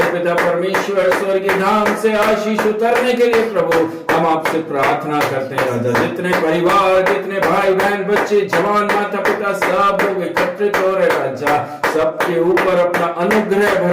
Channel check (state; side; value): identical; both; correlation 1.00